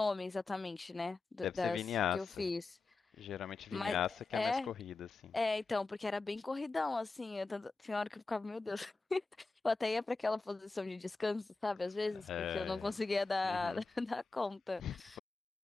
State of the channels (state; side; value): quieter; right; 3.7 dB